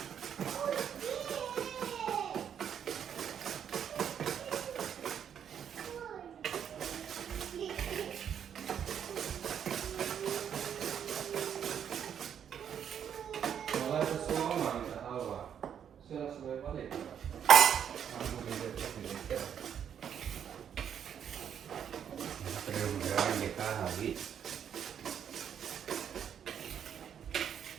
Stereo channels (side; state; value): left; quieter; 8.6 dB